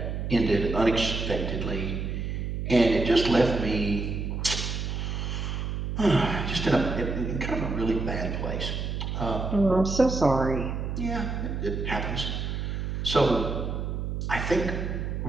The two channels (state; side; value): noise; right; hum, 3 dB below the sound